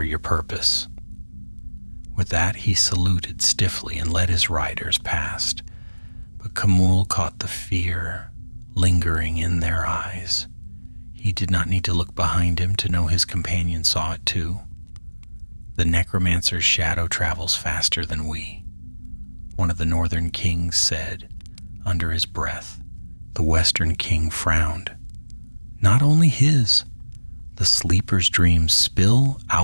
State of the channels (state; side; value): inverted; both; correlation -1.00